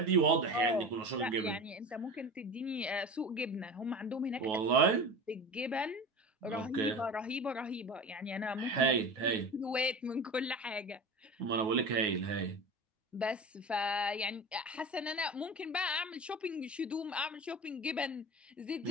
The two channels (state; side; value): normal; both; correlation 0.32